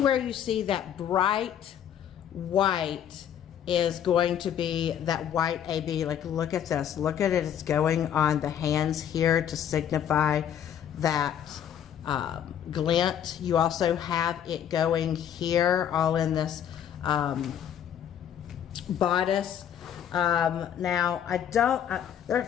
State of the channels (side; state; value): right; quieter; 9.5 dB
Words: you see that bright white is going to be that white AB. Like, look at this, look at it, it's going on the hands here to signify that glint. You also have it going here, all in this bodice. Now I don't,